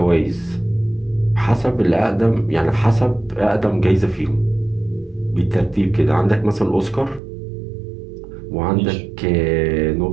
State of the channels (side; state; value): left; drops out; at 7.2 s